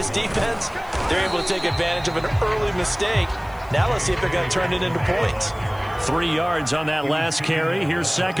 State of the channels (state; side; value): noise; left; hiss, 26 dB below the sound